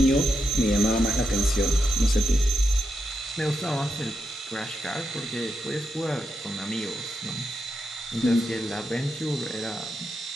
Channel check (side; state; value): both; normal; correlation 0.85